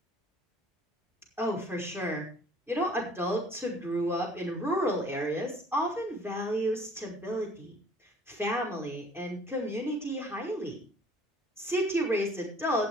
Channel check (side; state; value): both; normal; correlation 0.54